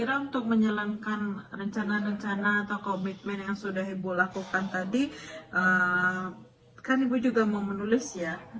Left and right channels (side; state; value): both; identical; correlation 1.00